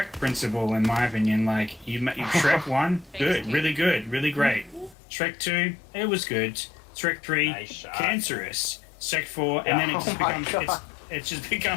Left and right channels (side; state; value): right; drops out; at 5.0 s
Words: principle, in my opinion. Like you Shrek 1, good, really good, really great. Shrek 2, it was good. Shrek 3, Nice shot. cancerous. Shrek 4, and then it just